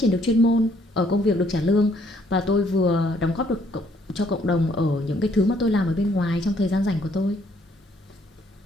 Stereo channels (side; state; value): both; normal; correlation 0.66